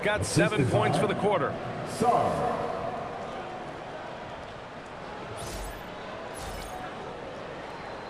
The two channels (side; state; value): both; identical; correlation 1.00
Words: got 7 points for the quarter.